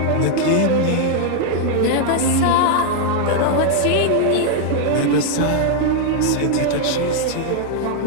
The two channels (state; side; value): different; both; correlation -0.01